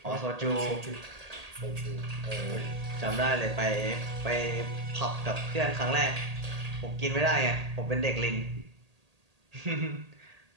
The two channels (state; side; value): late; left; 1.8 ms